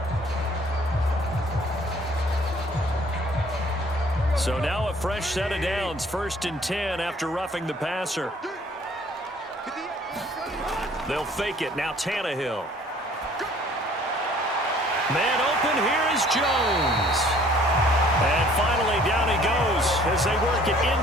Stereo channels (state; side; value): normal; both; correlation 0.56